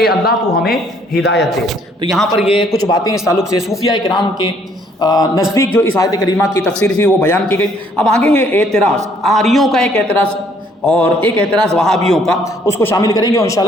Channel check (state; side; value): normal; both; correlation 0.64